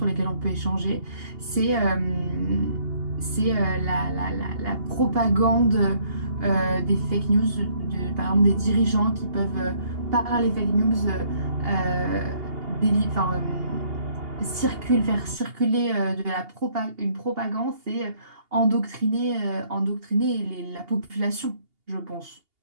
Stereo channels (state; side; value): late; left; 2.8 ms